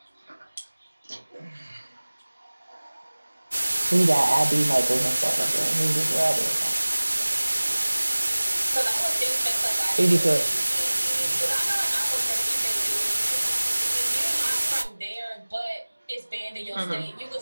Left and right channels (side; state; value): both; inverted; correlation -1.00